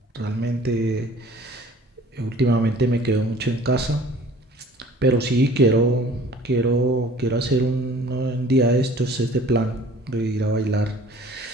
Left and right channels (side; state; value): both; normal; correlation 0.50